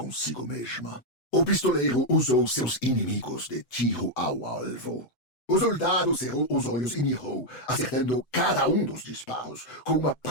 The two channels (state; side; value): late; right; 7.9 ms